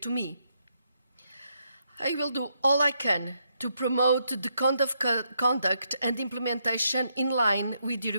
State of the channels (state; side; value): inverted; both; correlation -0.78